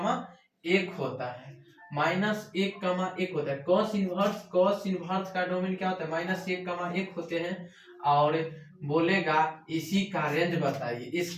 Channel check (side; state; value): both; identical; correlation 1.00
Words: होता है, -1,1 होता है। कॉस इनवर्स का डोमेन क्या होता है? -1,1 होते हैं। और बोलेगा इसी का रेंज बताइए,